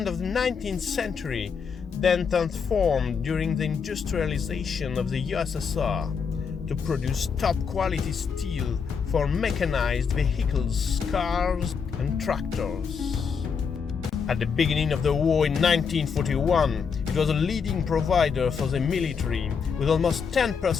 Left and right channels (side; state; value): right; quieter; 6.1 dB